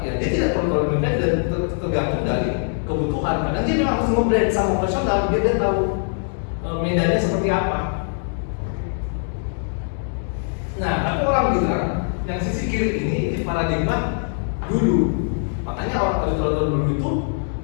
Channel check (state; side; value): silent; right; 64 dB below the other